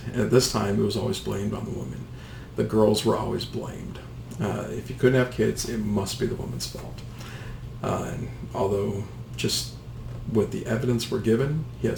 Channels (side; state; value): both; identical; correlation 1.00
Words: And at this time, it was always blamed on the woman. The girls were always blamed. If you couldn't have kids, it must be the woman's fault. And although, just with the evidence we're given, he